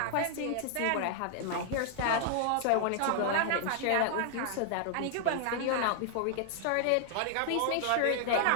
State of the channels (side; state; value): both; different; correlation 0.00